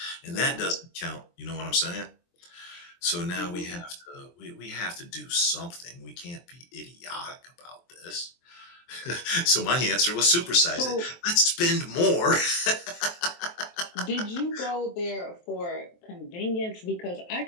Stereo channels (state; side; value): late; right; 23 ms